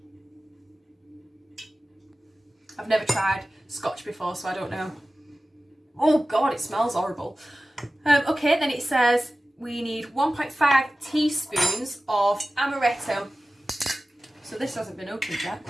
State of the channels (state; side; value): normal; both; correlation 0.96